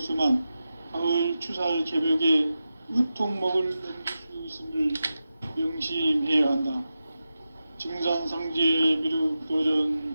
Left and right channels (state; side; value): inverted; both; correlation -0.92